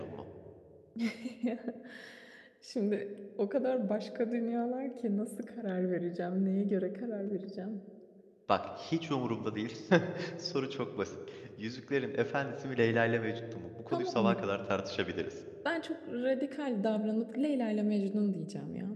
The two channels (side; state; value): both; identical; correlation 1.00